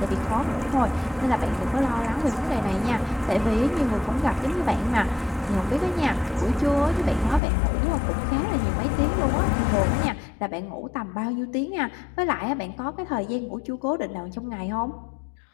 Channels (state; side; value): drops out; right; at 7.4 s